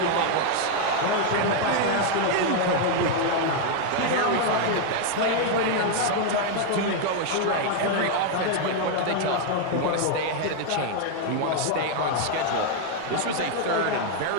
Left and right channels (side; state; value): both; different; correlation 0.00